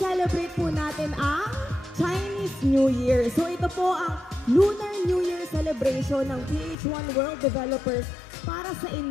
po natin ang Chinese New Year. So ito po ang Lunar New Year celebration ng PH1 World Developers para sa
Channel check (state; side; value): drops out; right; at 6.8 s